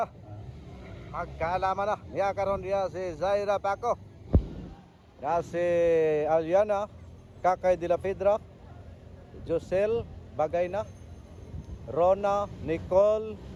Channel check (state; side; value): identical; both; correlation 1.00